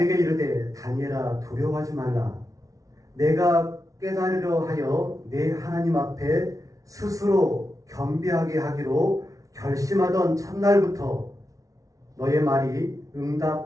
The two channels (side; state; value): left; late; 0.17 ms